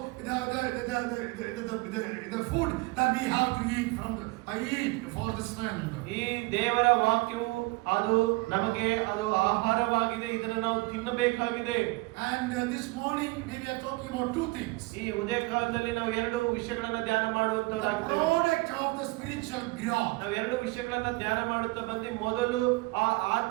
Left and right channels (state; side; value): quieter; left; 23.8 dB